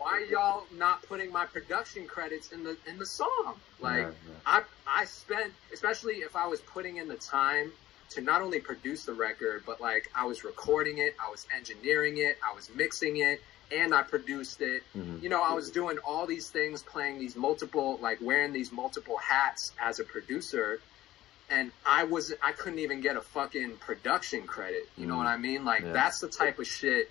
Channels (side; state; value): right; quieter; 14.9 dB